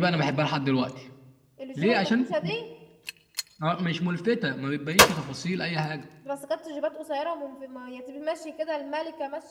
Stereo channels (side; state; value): both; identical; correlation 1.00